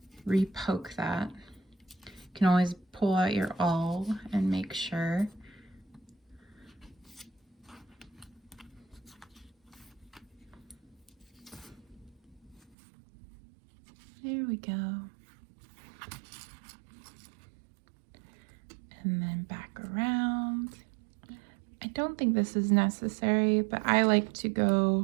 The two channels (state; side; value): drops out; left; at 12.8 s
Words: re-poke that. You can always pull out your awl and make sure. There we go. And then back around. I don't think this is necessary, but I like to